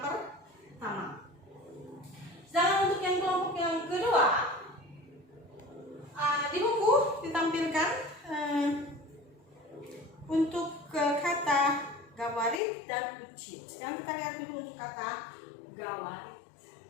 Sedangkan untuk yang kelompok yang kedua, di buku ditampilkan untuk kata gawarit dan ucit. Sekarang kita lihat dulu untuk kata gawarit.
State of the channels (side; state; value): right; drops out; at 12.6 s